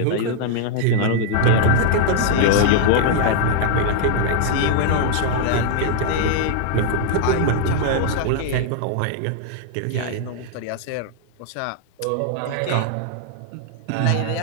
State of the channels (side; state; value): both; different; correlation 0.00